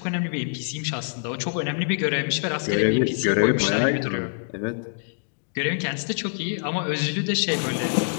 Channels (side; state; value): right; silent; digital silence